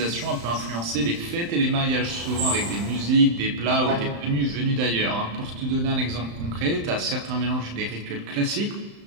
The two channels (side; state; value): left; late; 35 ms